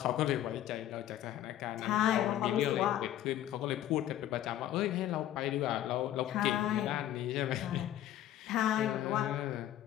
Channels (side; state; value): right; quieter; 12.5 dB